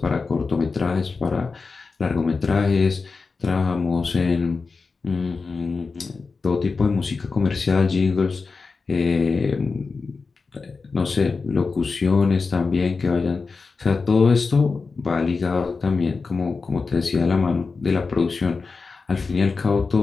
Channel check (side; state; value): right; quieter; 4.4 dB